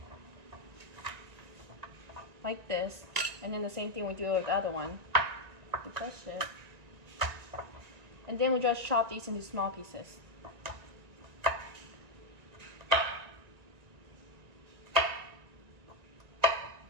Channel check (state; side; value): late; left; 1.9 ms